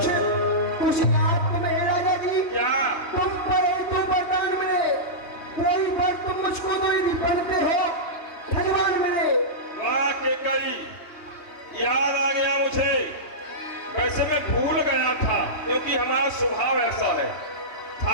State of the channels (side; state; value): right; late; 3.1 ms